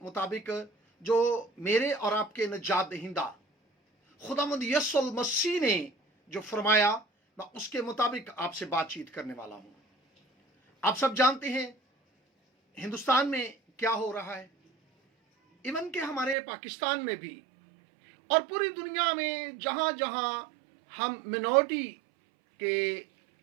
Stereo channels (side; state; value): left; drops out; at 16.4 s